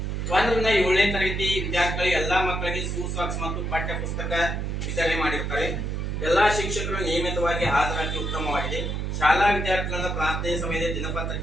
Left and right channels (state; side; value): noise; right; hum, 2 dB below the sound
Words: 1 ರಿಂದ 7ನೇ ತರಗತಿ ವಿದ್ಯಾರ್ಥಿಗಳು ಎಲ್ಲಾ ಮಕ್ಕಳಿಗೆ ಶೂಸಾಕ್ಸ್ ಮತ್ತು ಪಠ್ಯ ಪುಸ್ತಕ ವಿತರಣೆ ಮಾಡಿರುತ್ತಾರೆ. ಎಲ್ಲಾ ಶಿಕ್ಷಕರು ನಿಯಮಿತವಾಗಿ ಹಾಜರಾತಿ ಉತ್ತಮವಾಗಿದೆ. ಶಾಲಾ ವಿದ್ಯಾರ್ಥಿಗಳಿಂದ ಪ್ರಾರ್ಥನೆ ಸಮಯದಲ್ಲಿ